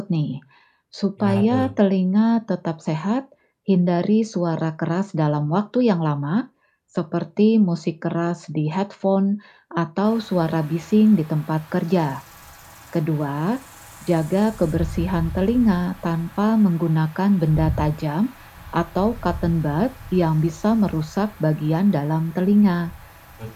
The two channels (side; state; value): both; identical; correlation 1.00